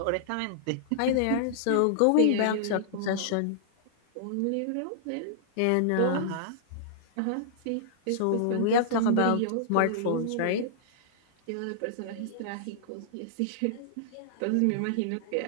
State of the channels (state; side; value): different; both; correlation -0.01